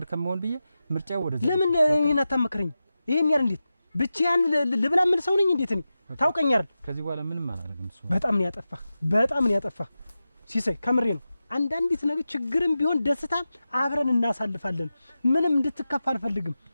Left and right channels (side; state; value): both; inverted; correlation -0.93